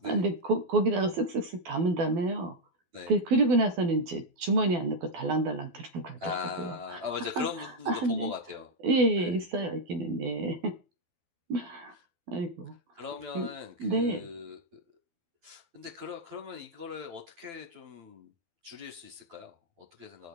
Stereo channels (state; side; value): late; left; 12 ms